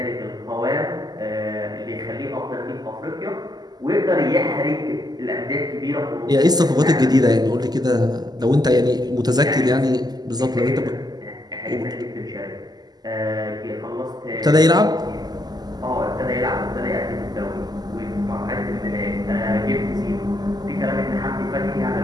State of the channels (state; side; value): late; left; 0.20 ms